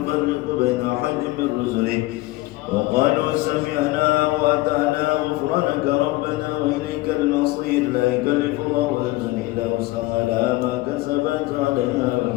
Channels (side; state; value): right; quieter; 19.4 dB